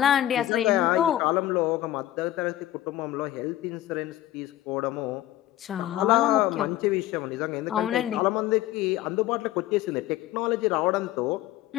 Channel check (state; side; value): quieter; right; 14.1 dB